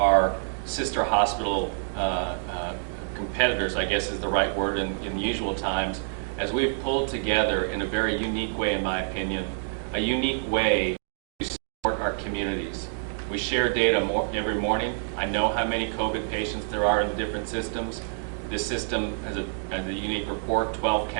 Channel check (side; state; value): left; silent; digital silence